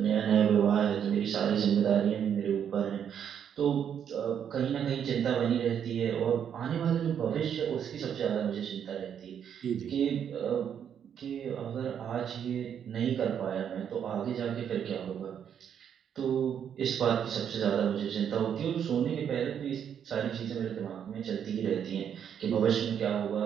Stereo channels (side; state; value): left; quieter; 8.5 dB